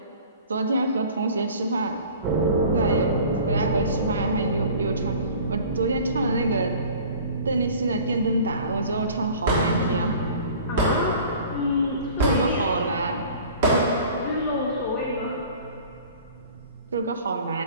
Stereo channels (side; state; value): both; inverted; correlation -0.46